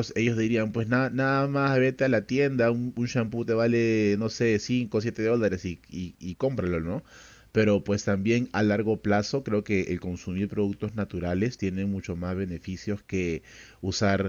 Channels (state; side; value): identical; both; correlation 1.00